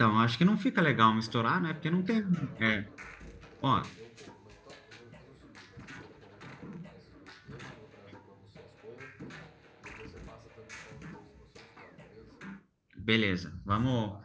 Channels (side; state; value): both; identical; correlation 1.00